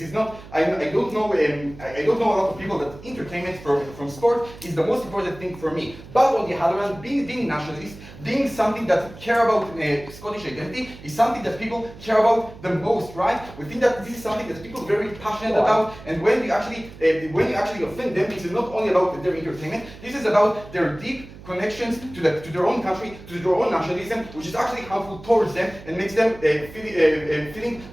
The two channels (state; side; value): noise; right; hum, 17 dB below the sound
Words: is not. I don't know a lot of people that entertainment from sport is the most important thing for me. But on the other hand, being nationalist, being something that care about Scottish identity is something that people care about the most, right? We think that this is something that people are very passionate about, and when you actually offend them, this is not only about their entertainment. This is about their deep connections to their own country, to their own nationalism, which is actually harmful towards them and makes them feeling